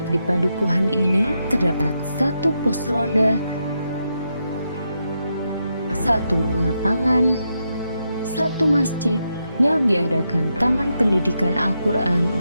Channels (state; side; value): inverted; both; correlation -0.83